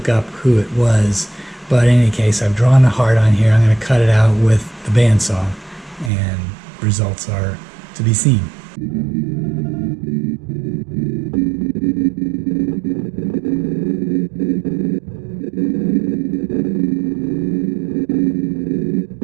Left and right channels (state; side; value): drops out; left; at 6.1 s